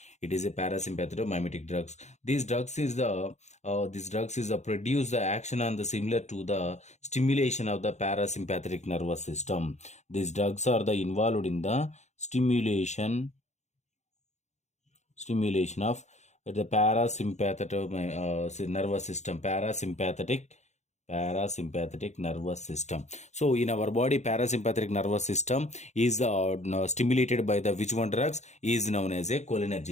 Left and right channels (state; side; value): late; right; 0.33 ms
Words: It is a parasympathetomimetic drugs. These drugs is the produce the action on the similar to the stimulation of the parasympathetic nervous system. These drugs are the involved in the stimulation of the parasympathetic nervous system, parasympathetic nervous system. So in our body, parasympathetic nervous system is stimulated by the which one drugs is known as a